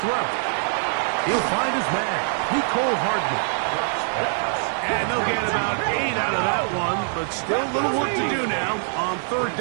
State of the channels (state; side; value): silent; left; digital silence